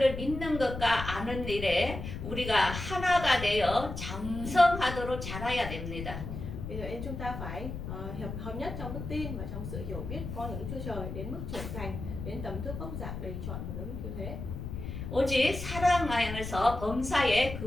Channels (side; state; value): left; noise; rumble, 7 dB below the sound